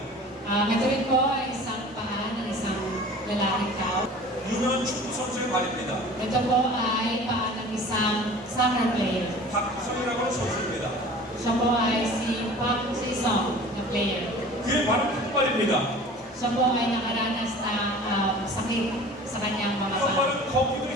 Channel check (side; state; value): both; normal; correlation 0.43